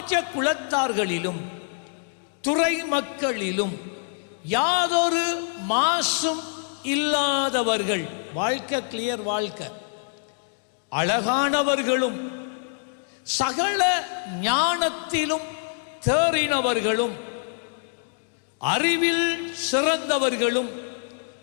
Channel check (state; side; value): silent; right; digital silence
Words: துறை மக்களிலும் யாதொரு மாசும் இல்லாதவர்கள், வாழ்க்கை கிளியர் வாழ்க்கை, அழகானவர்களும் சகல ஞானத்திலும் தேறினவர்களும் அறிவில் சிறந்தவர்களும்